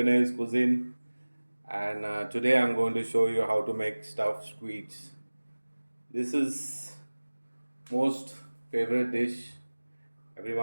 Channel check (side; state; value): both; inverted; correlation -1.00